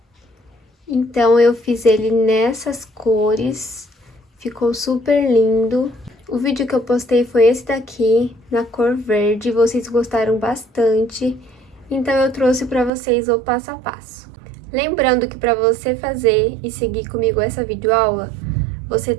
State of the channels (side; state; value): left; drops out; at 12.9 s